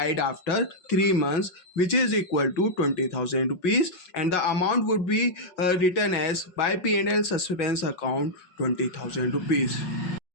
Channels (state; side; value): late; right; 5.5 ms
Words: after 3 months, which is equal to 20,000 rupees, and the amount would be written as by P&L suspense account 20,000 rupees.